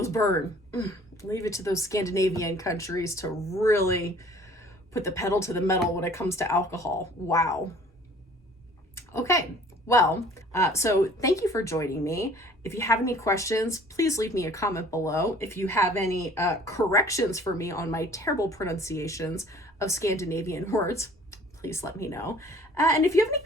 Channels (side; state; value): both; normal; correlation 0.52